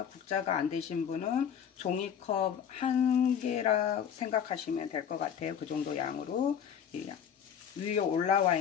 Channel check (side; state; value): right; quieter; 8.3 dB